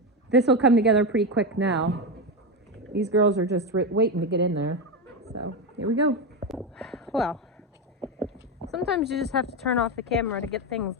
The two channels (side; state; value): both; normal; correlation 0.13